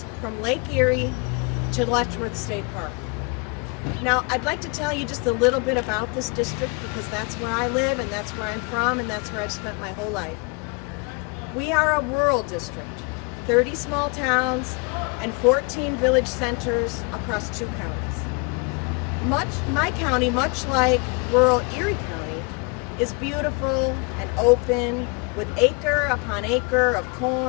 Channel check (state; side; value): quieter; right; 31.9 dB